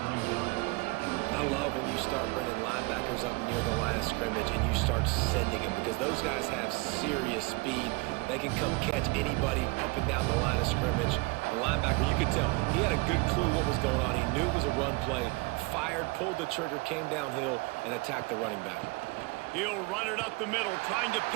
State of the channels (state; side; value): quieter; left; 26.4 dB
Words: I love when you start bringing linebackers up near the line of scrimmage and you start sending them because those guys have serious speed. They can come catch anybody up and down the line of scrimmage. The linebacker, you could tell, he had a good clue what was going on. He knew it was a run play, fired, pulled the trigger, came downhill, and attacked the running back. He'll run it up the middle, trying to